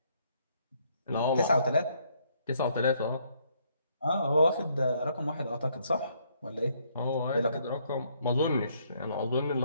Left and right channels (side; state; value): both; inverted; correlation -0.69